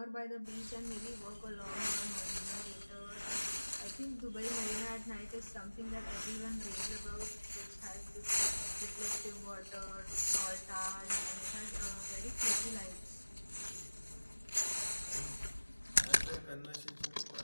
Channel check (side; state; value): both; inverted; correlation -1.00